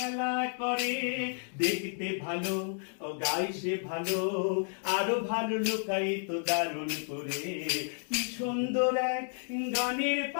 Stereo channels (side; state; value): right; silent; 57 dB below the other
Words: করে। দেখতে ভালো ও গায়ে সে ভালো, আরো ভালো লুকাই তো দারুণ করে। কি সুন্দর এক গানের